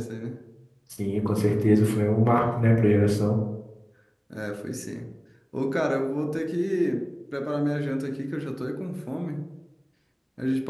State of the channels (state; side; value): identical; both; correlation 1.00